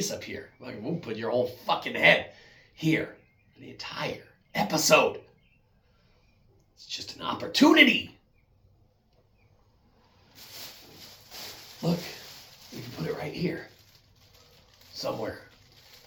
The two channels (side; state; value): both; identical; correlation 1.00